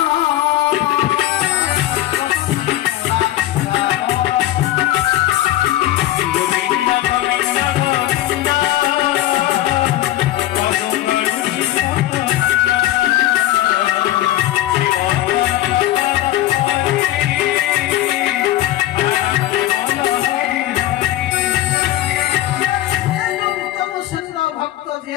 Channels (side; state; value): right; quieter; 14.4 dB